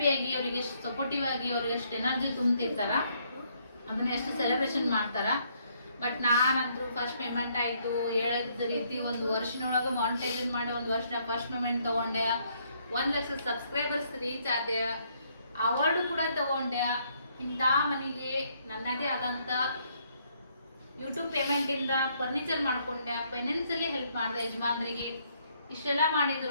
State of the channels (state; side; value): inverted; both; correlation -0.70